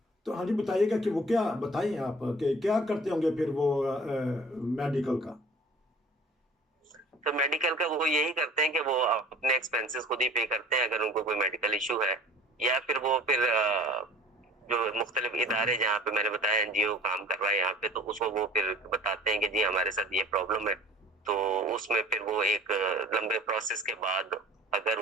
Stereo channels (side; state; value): both; normal; correlation 0.46